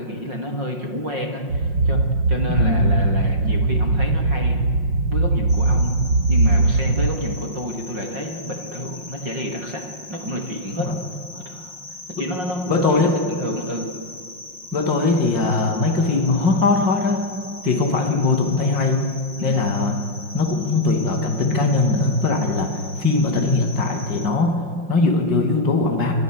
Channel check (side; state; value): left; late; 5.6 ms